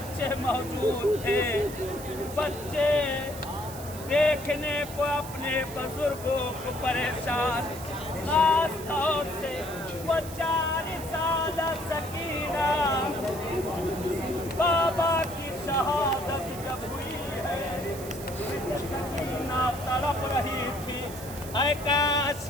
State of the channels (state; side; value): noise; right; hiss, 14 dB below the sound